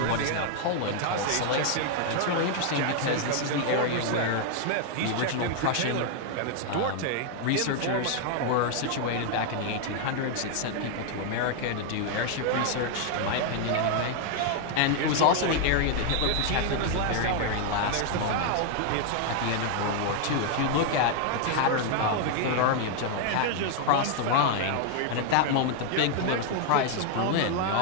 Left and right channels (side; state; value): both; different; correlation 0.00